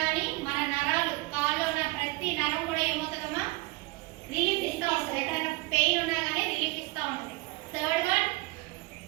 కానీ మన నరాలు కాల్లో ఉన్న ప్రతి నరం కూడా ఏమవుతుందమ్మా, రిలీఫ్ ఇస్తా ఉంటుంది. ఎక్కడైనా పెయిన్ ఉన్నా కానీ రిలీఫ్ ఇస్తా ఉంటుంది. థర్డ్ వన్,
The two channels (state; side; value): quieter; left; 22.9 dB